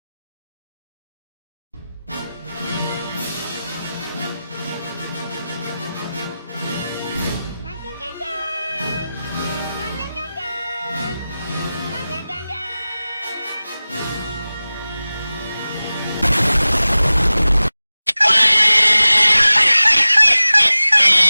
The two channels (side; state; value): both; inverted; correlation -0.96